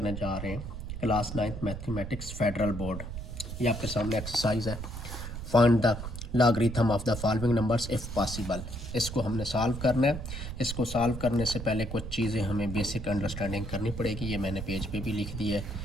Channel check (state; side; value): noise; right; rumble, 7 dB below the sound